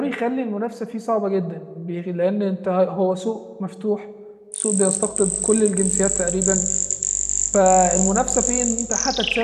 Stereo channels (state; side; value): identical; both; correlation 1.00